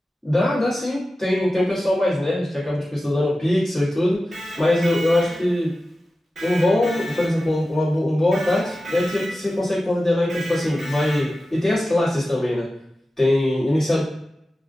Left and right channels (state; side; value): normal; both; correlation 0.94